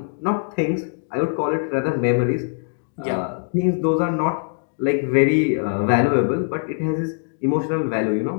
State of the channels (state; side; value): silent; right; digital silence